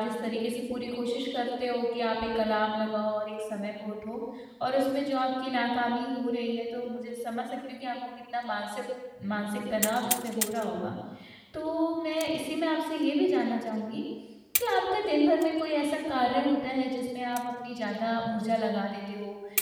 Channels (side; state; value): both; identical; correlation 1.00